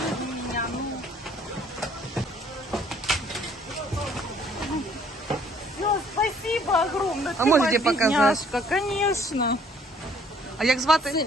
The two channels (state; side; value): normal; both; correlation 0.60